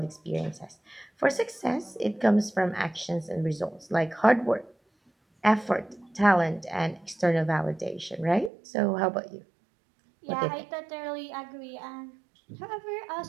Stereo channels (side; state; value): left; drops out; at 8.5 s